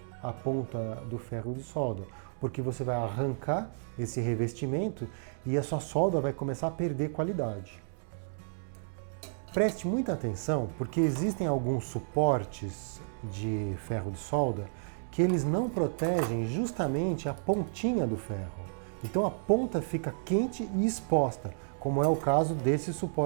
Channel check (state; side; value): silent; left; digital silence